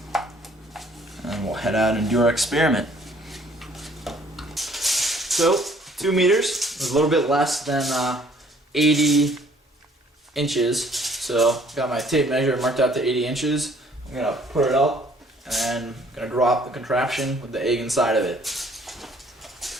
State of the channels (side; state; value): both; normal; correlation 0.59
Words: And we'll head out and do our experiment. So, 2 meters is a little bit less than 80 inches. So, got my tape measure marked out to 80 inches. I'm going to put it up, and then I'm going to drop the contraption with the egg inside of it. Let's